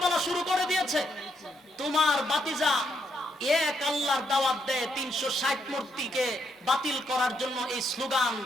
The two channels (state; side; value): normal; both; correlation 0.77